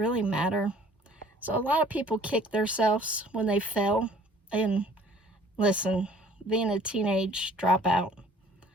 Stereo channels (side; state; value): both; normal; correlation 0.54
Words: matter? So a lot of people kick themselves when they fail. And listen, being a teenage dropout,